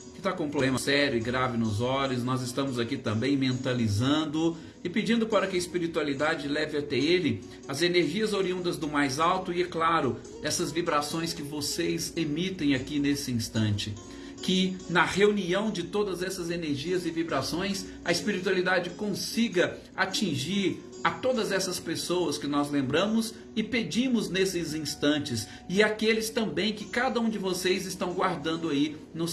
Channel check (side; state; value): both; identical; correlation 1.00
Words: que está com um problema sério e grave nos olhos. Nós estamos aqui também mentalizando e pedindo para que a espiritualidade leve até ele as energias oriundas do mais alto e, é claro, essas vibrações que vocês emitem aqui nesse instante. que na reunião de todas essas energias e vibrações, a espiritualidade consiga atingir a todas essas pessoas que nós lembramos e pedimos nesses instantes, e aqueles também que cada um de vocês estão guardando aí nos